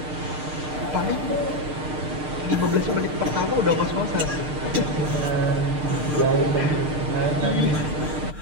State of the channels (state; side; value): late; left; 6.6 ms